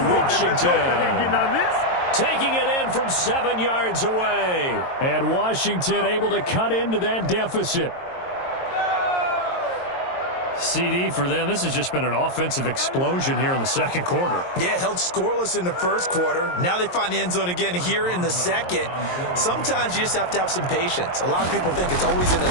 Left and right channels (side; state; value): right; late; 22 ms